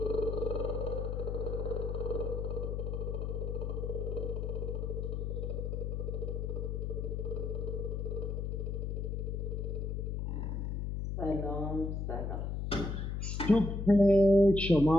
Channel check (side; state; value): left; noise; hum, 2 dB below the sound